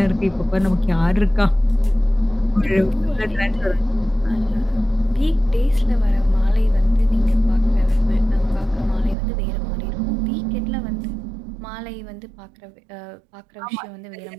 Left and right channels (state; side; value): drops out; left; at 9.2 s